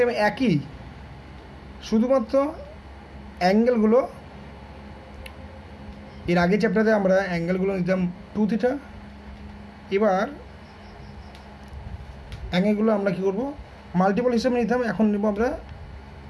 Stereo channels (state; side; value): identical; both; correlation 1.00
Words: একই, শুধুমাত্র অ্যাঙ্গেলগুলো, এর আগে চ্যাপ্টারে আমরা অ্যাঙ্গেলগুলো নিতাম 2 থিটা, এবার অ্যাঙ্গেলগুলো আমরা কী করবো মাল্টিপল হিসেবে নিতাম, এখন নেব আমরা